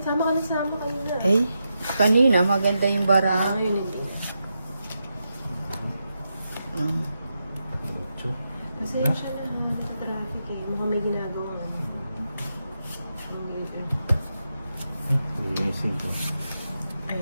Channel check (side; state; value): both; inverted; correlation -0.86